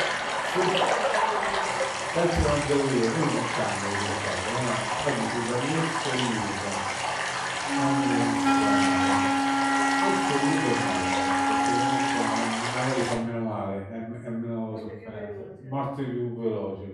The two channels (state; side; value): identical; both; correlation 1.00